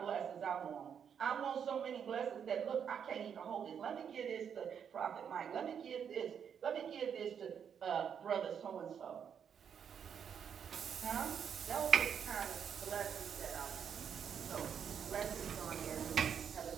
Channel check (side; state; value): left; quieter; 7.8 dB